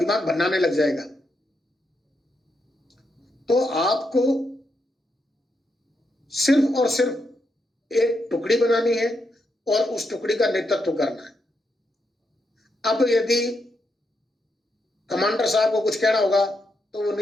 भन्नाने लग जाएगा। तो आपको सिर्फ और सिर्फ एक टुकड़ी बनानी है और उस टुकड़ी का नेतृत्व करना है। अब यदि कमांडर साहब को कुछ कहना होगा तो वो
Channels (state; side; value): normal; both; correlation 0.82